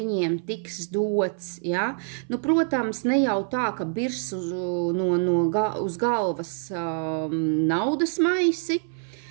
tiks dots. Ja? Nu, protams, ne jau tā, ka birs uz galvas naudas maisi,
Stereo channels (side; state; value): left; silent; 57 dB below the other